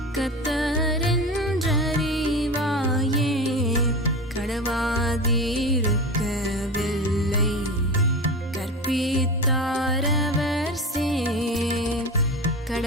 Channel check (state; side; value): normal; both; correlation 0.27